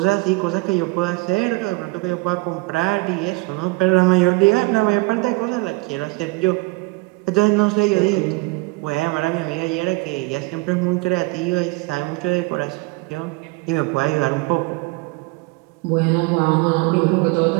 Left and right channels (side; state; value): left; quieter; 25.5 dB